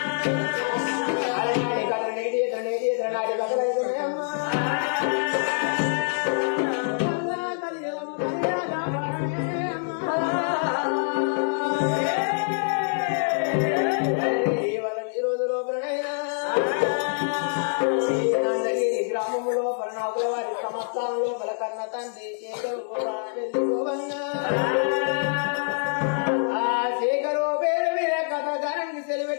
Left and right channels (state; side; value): silent; right; 61 dB below the other